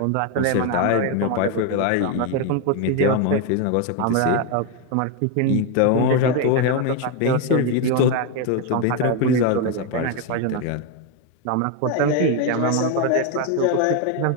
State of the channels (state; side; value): different; both; correlation 0.02